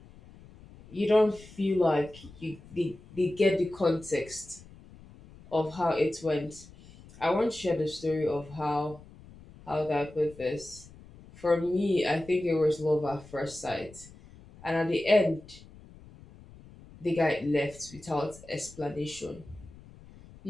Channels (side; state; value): left; noise; rumble, 21 dB below the sound